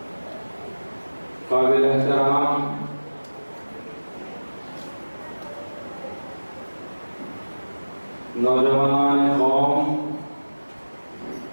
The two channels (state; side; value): inverted; both; correlation -1.00